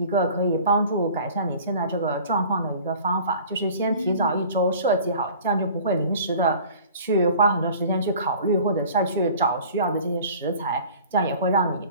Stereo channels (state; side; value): inverted; both; correlation -0.45